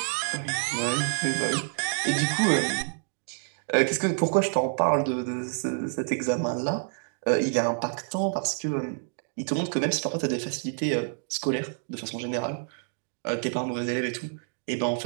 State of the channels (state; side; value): silent; left; digital silence